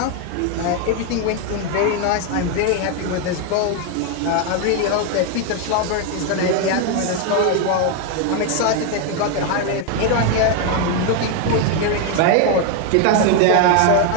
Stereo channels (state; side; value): different; both; correlation 0.01